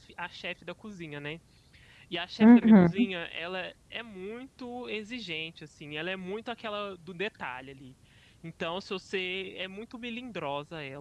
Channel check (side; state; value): both; identical; correlation 1.00